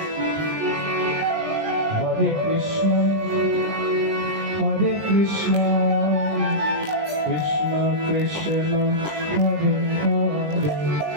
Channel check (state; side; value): late; left; 20 ms